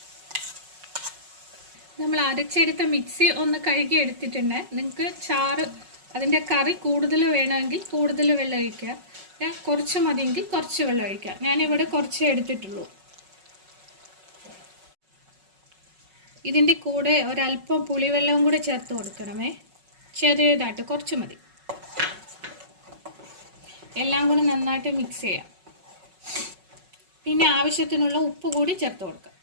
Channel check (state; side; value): late; left; 5.4 ms